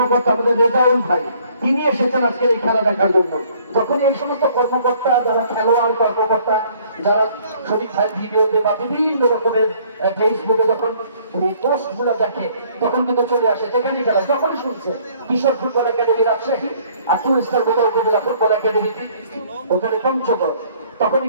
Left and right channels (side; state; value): both; inverted; correlation -0.60